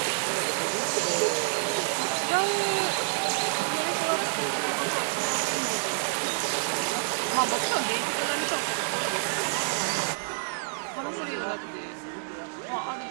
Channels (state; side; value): silent; left; digital silence